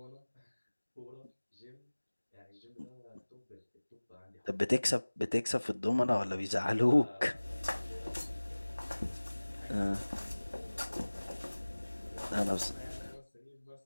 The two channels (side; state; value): both; inverted; correlation -1.00